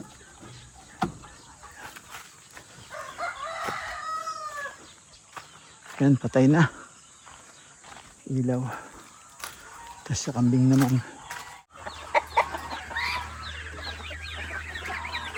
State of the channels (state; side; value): identical; both; correlation 1.00